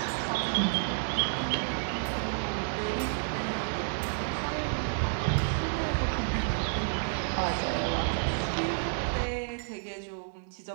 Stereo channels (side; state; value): left; silent; digital silence